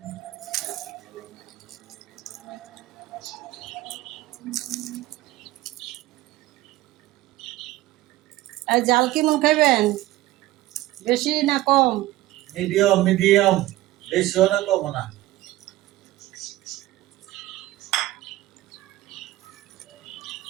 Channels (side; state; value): left; quieter; 16.6 dB